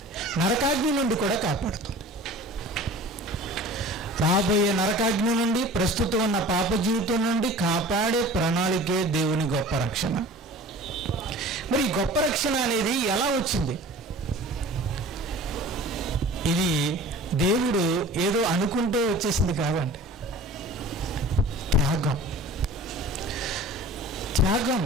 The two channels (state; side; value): normal; both; correlation 0.42